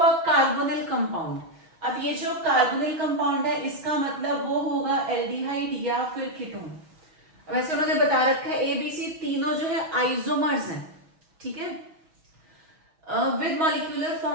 a carbonyl compound. अब ये जो कार्बोनिल कंपाउंड है इसका मतलब वो होगा एल्डिहाइड या फिर कीटोन। वैसे उन्होंने बता रखा है ए बी सी तीनों जो है आइसोमर्स हैं, ठीक है। विद मॉलिक्यूलर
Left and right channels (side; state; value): left; late; 6.3 ms